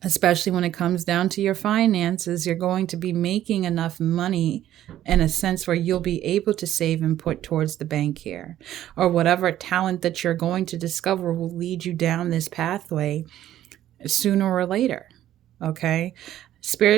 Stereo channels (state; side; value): quieter; left; 12.5 dB